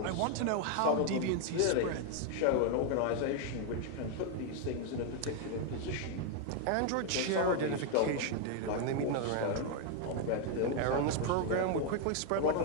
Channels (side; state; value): both; different; correlation 0.00